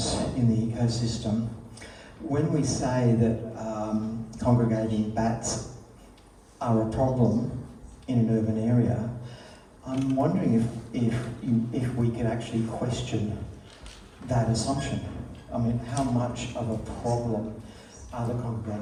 in the ecosystem. When we say that congregating bats are a problem in an urban area, I'm wondering if we could actually question that assumption. I mean, how much of a problem are the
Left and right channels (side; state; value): both; identical; correlation 1.00